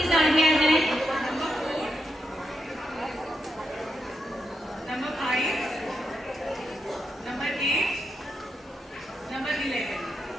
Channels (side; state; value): both; normal; correlation 0.84